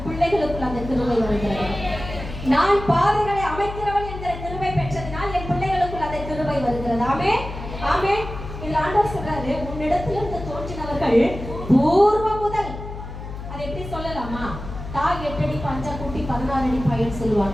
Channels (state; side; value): noise; left; hum, 10 dB below the sound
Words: பிள்ளைகளுக்குள் அந்த கிருபை வருகிறது. நான் பாதைகளை அமைக்கிறவள் என்கிற கிருபை பெற்றதினால் என் பிள்ளைகளுக்குள் அந்த கிருபை வருகிறது. ஆமென், ஆமென். இந்த ஆண்டவர் சொல்றாரு, உன்னிடத்திலிருந்து தோன்றினவர்கள் பூர்வ முதல். அதை எப்படி சொல்லலாமா? தாய் 8 அடி பஞ்சா குட்டி 16 அடி பையன்